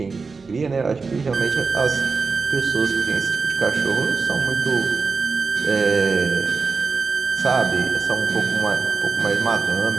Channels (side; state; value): left; quieter; 4.6 dB